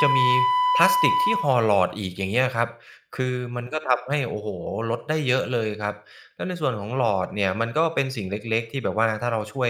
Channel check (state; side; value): identical; both; correlation 1.00